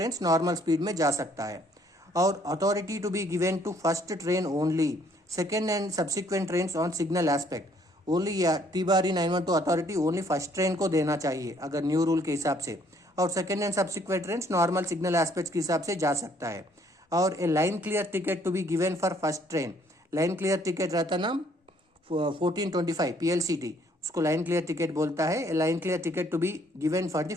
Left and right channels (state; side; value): normal; both; correlation 0.64